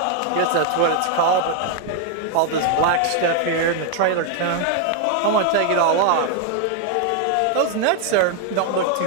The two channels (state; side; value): different; both; correlation 0.00